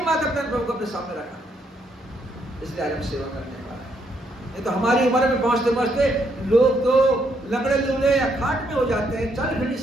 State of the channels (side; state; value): both; normal; correlation 0.74